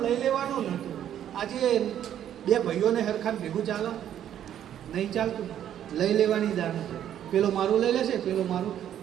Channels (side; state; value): left; quieter; 10.5 dB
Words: લઈ લેવાનું નહોતું. આજે 2 ભાઈઓને હરખાન ભેગું ચાલો નહીં ચાલતું, લઈ લેવાની દાન છે. પેલો મારું લઈ લેશે, પેલો મારું,